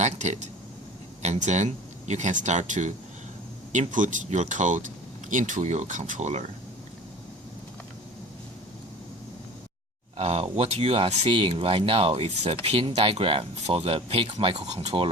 and then you can start to input your code into your controller. What you are seeing right now is a pin diagram for the PIC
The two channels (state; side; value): normal; both; correlation 0.40